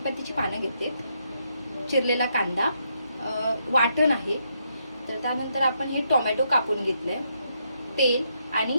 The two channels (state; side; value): inverted; both; correlation -0.78